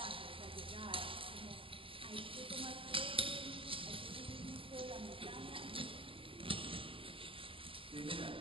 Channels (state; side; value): late; left; 0.26 ms